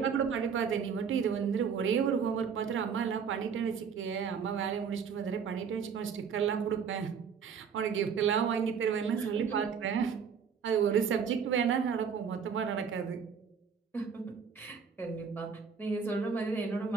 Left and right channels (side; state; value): left; quieter; 6.7 dB